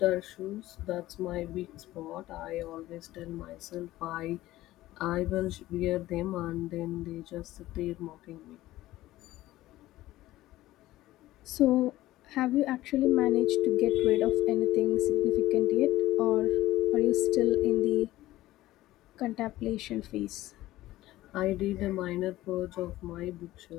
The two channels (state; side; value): quieter; right; 16.1 dB